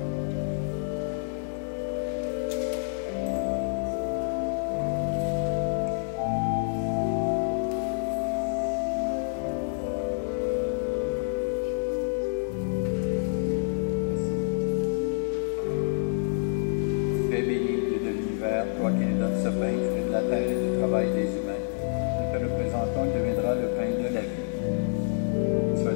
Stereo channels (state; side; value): silent; right; 59 dB below the other